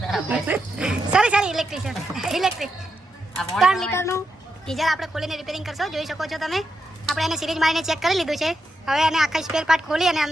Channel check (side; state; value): both; normal; correlation 0.85